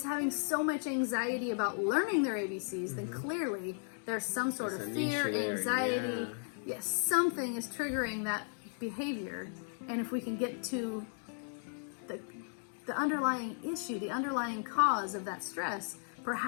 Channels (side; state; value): right; silent; 54 dB below the other